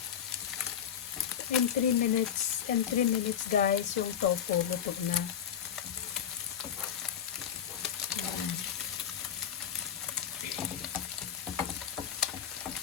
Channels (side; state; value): right; quieter; 8.9 dB